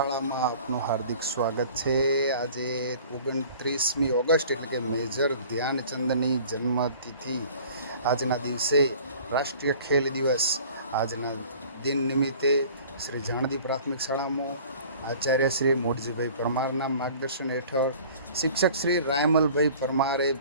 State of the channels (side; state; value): both; inverted; correlation -0.48